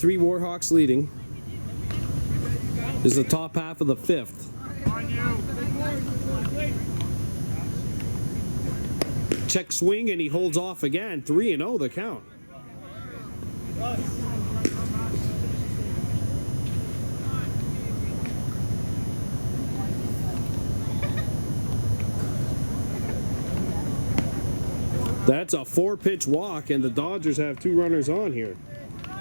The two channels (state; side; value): inverted; both; correlation -1.00